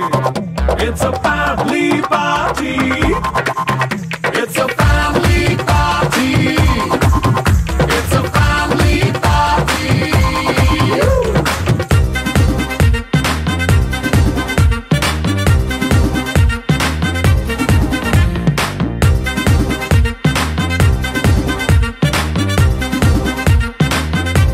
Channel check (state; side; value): identical; both; correlation 1.00